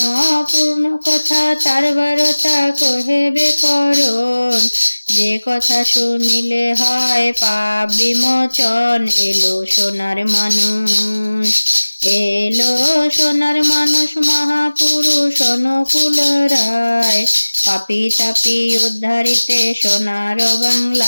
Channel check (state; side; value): inverted; both; correlation -1.00